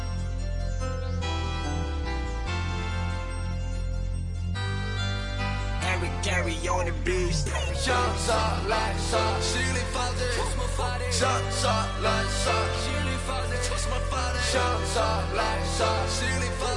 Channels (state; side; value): identical; both; correlation 1.00